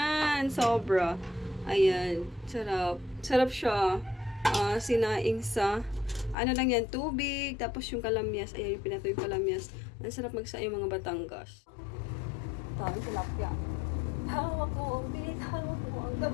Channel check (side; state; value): right; drops out; at 6.4 s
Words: Sobra. Ayan. Sarap. Sarap siya. Sinaing sa ano lang yan, tubig. Tapos yung kalamyas. Ayan yung pinatoy yung kalamyas. Ang sarap magsaing mga Batangas. Tawag tilapia. Hawak mo ang bit, hawak mo ang